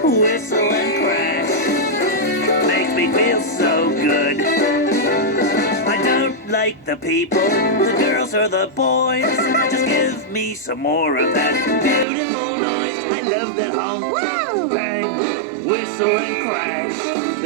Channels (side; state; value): left; drops out; at 12.1 s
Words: whistle and crash makes me feel so good. I don't like the people, the girls or the boys. Just give me some more of that beautiful noise. I love that honk, bang, whistle and crash